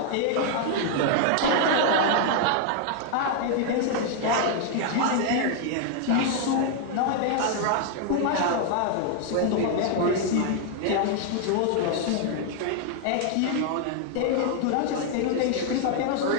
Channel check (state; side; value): different; both; correlation 0.00